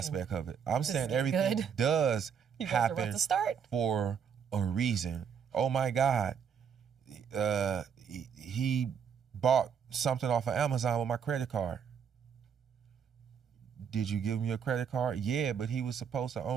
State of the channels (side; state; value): left; quieter; 7.3 dB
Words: of it. I'm saying getting everything good. does You guys are about happen to start. for a reason. Oh my God, he bought something off of Amazon with my credit card. Did you give me a credit card? Yeah, but he was supposed to